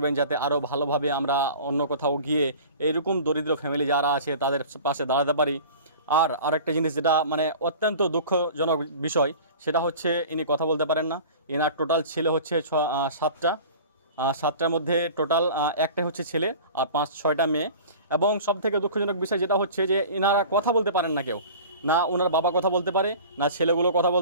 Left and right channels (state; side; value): inverted; both; correlation -0.40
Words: যাতে আরও ভালোভাবে আমরা অন্য কোথাও গিয়ে এইরকম দরিদ্র ফ্যামিলি যারা আছে তাদের পাশে দাঁড়াতে পারি। আর আরেকটা জিনিস যেটা মানে অত্যন্ত দুঃখজনক বিষয়, সেটা হচ্ছে ইনি কথা বলতে পারেন না। এনার টোটাল ছেলে হচ্ছে 7টার মধ্যে টোটাল একটাই হচ্ছে ছেলে আর 5-6টা মেয়ে। এবং সবথেকে দুঃখজনক বিষয় যেটা হচ্ছে যে এনারা কথা বলতে পারেন না, কেউ না ওনার বাবা কথা বলতে পারে, না ছেলেগুলো কথা